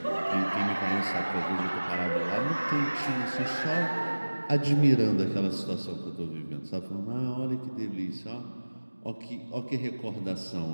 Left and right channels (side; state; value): both; inverted; correlation -1.00